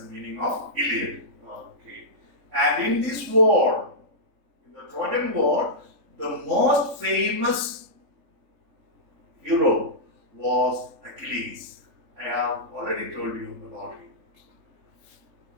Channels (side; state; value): left; late; 3.6 ms